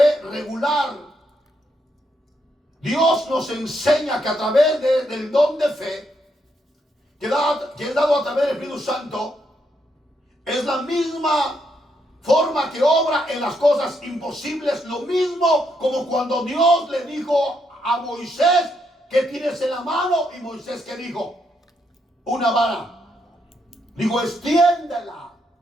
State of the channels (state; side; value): normal; both; correlation 0.78